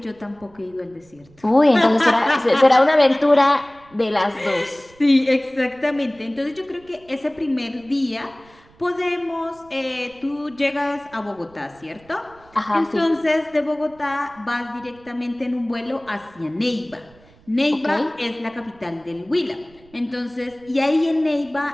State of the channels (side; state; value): right; noise; rumble, 28 dB below the sound